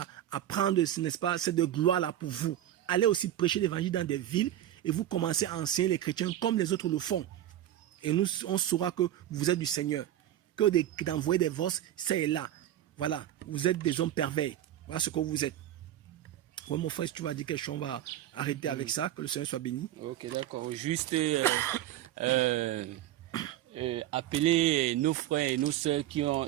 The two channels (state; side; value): quieter; left; 12.3 dB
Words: prendre, n'est-ce pas, cette gloire-là pour vous. Allez aussi prêcher l'évangile dans des villes et vous commencez à enseigner les chrétiens comme les autres le font. Et nous, on saura que vous êtes du Seigneur. Que d'envoyer des voces, c'est là. Voilà, vous êtes des hommes pervers. Voilà ce que vous êtes. Ouais, mon frère, si tu vas dire quelque chose, on va arrêter avec ça. Que le Seigneur soit béni. Ok, d'accord. Juste appeler nos frères et nos sœurs qui